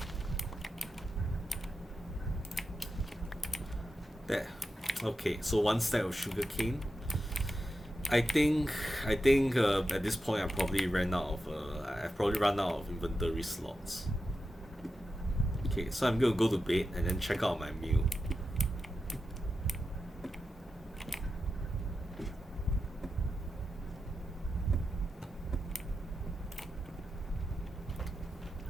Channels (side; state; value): both; normal; correlation 0.89